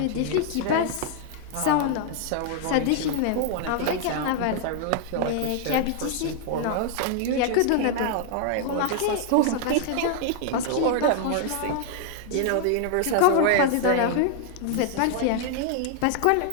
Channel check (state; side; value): different; both; correlation 0.00